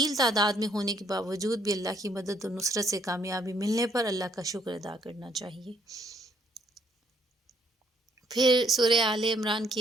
تعداد میں ہونے کے باوجود بھی اللہ کی مدد و نصرت سے کامیابی ملنے پر اللہ کا شکر ادا کرنا چاہیے۔ پھر سورہ آل عمران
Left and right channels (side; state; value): both; normal; correlation 0.68